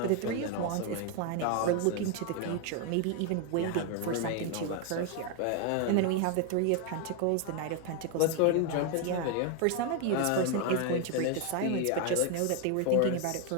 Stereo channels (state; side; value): different; both; correlation 0.01